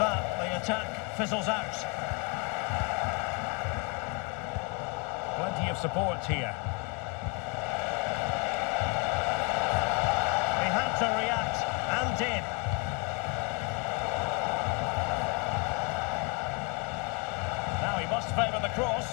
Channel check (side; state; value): right; quieter; 32.0 dB